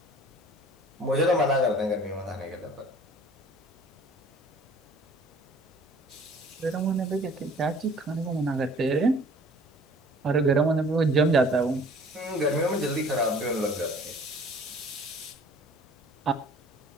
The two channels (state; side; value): normal; both; correlation 0.51